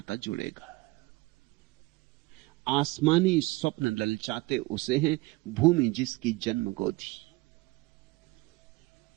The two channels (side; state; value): left; quieter; 21.7 dB